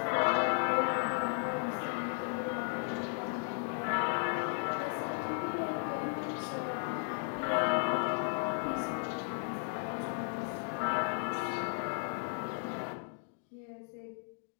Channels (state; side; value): silent; right; 54 dB below the other